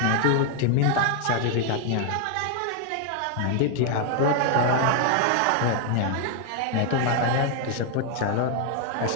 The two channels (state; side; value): different; both; correlation 0.00